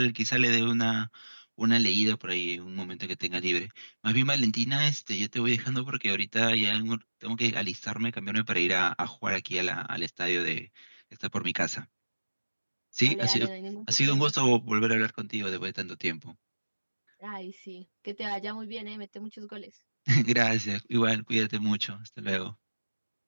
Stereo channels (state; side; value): inverted; both; correlation -1.00